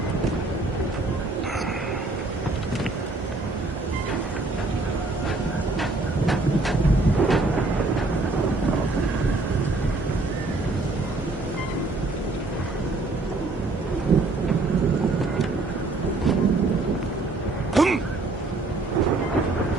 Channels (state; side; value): quieter; left; 3.2 dB